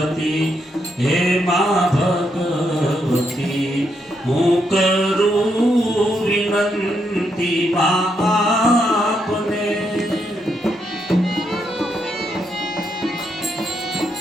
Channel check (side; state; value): both; normal; correlation 0.79